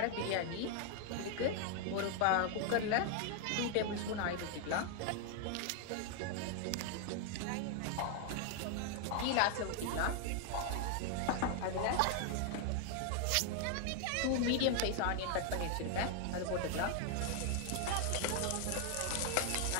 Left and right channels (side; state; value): both; different; correlation 0.00